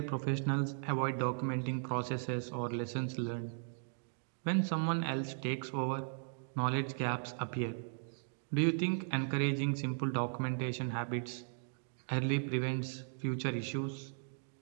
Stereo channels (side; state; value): left; silent; digital silence